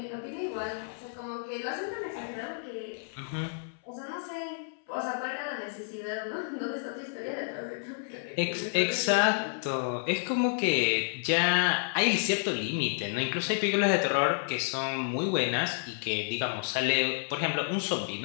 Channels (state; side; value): silent; right; 58 dB below the other